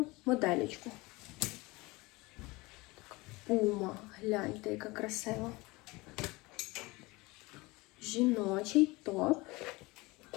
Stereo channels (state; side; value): quieter; right; 23.0 dB